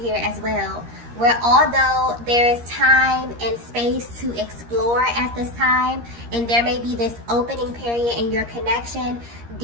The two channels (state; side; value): late; left; 13 ms